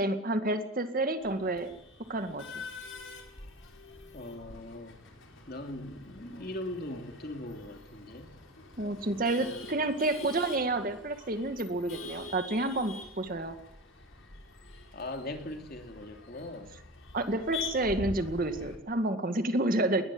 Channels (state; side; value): normal; both; correlation 0.31